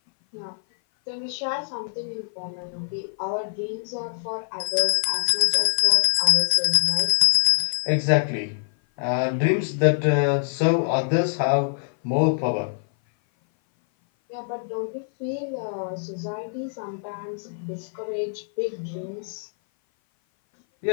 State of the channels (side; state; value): right; silent; 57 dB below the other